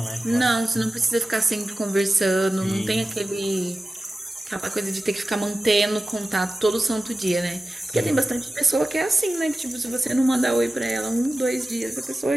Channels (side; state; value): both; normal; correlation 0.94